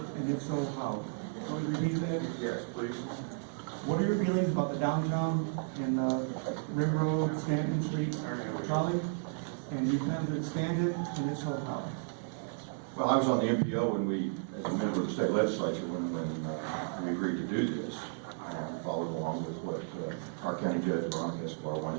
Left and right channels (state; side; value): silent; left; 55 dB below the other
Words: if so, how? Can you repeat that? Yes, please. What are your feelings about the downtown and Rim Road, Stanton Street trolley? And you plan to expand it, and if so, how? Well, I was on the MPO when we, as a member of the state legislature, when we agreed to do this. I followed along with what our county judge, Veronica Escobar,